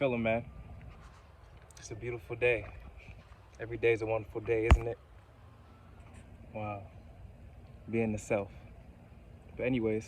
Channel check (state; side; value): identical; both; correlation 1.00